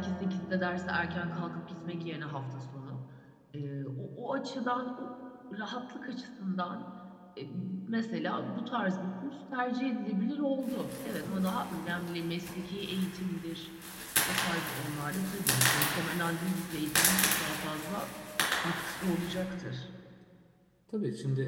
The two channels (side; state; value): both; identical; correlation 1.00